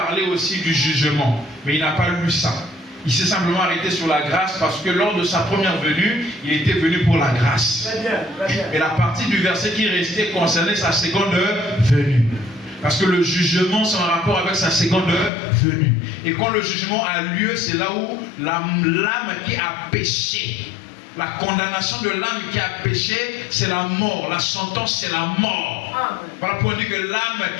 aussi du jugement, mais il n'a pas lu ça. Il s'est simplement arrêté sur la grâce parce que lors de sa première venue, il était venu pour la grâce. Très bien, très bien. Et la partie du verset qui restait concernait sa seconde venue. Parce que le jugement, c'est en rapport avec sa seconde venue. Et quand le jugement a lieu, c'est là où l'âme qui a péché, la condamnation de l'âme qui a péché, c'est la mort. La sentence, c'est la mort. Amen. Voilà pourquoi on dit que l'âme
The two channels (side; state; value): right; drops out; at 15.3 s